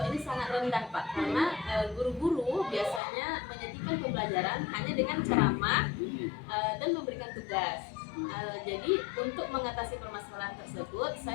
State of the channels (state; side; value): drops out; right; at 3.0 s